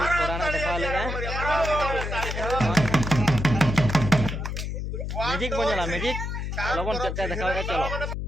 कोरा ना देखाव लेगा मैजिक बन जाला मैजिक लबन चटका देखाओ चलो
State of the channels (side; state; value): left; noise; hum, 4 dB below the sound